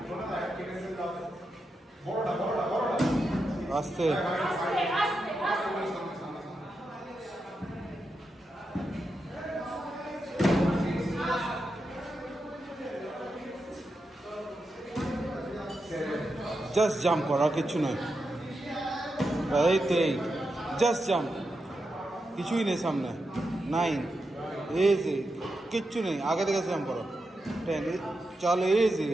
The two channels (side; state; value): both; normal; correlation 0.87